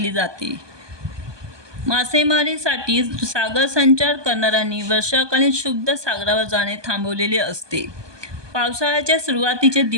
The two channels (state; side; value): late; left; 1.2 ms